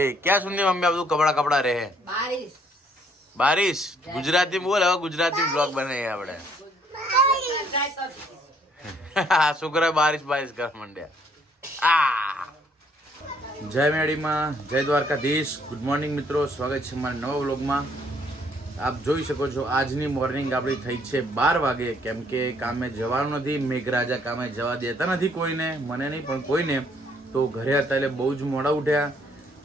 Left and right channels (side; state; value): both; normal; correlation 0.65